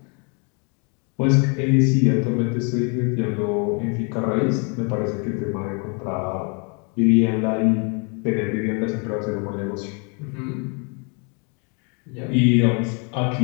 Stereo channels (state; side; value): quieter; right; 35.6 dB